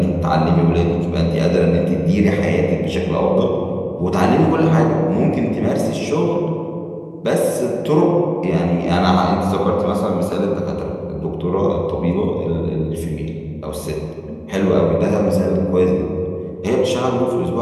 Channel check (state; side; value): identical; both; correlation 1.00